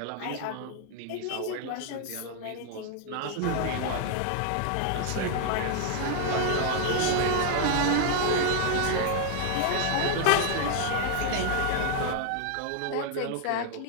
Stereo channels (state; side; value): different; both; correlation 0.00